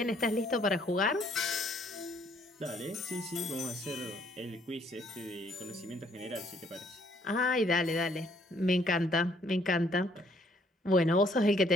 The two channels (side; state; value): both; normal; correlation 0.65